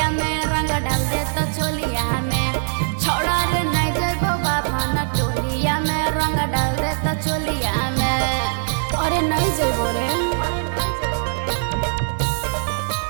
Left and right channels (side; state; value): left; silent; digital silence